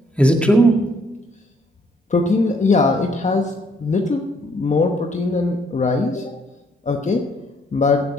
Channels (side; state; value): both; normal; correlation 0.68